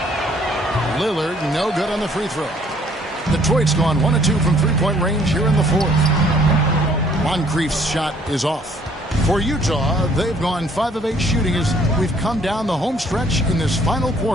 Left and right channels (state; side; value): normal; both; correlation 0.62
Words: Lillard, no good on the free throw. Detroit's gone 1 of 2 from three-point range here in the fourth. Moncrief's shot is off. For Utah, they've gone 5 of 8 shooting as we've come down the home stretch in this final